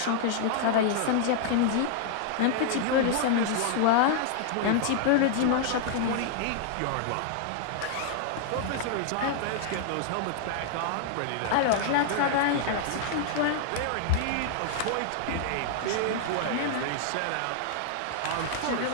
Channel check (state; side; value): different; both; correlation 0.00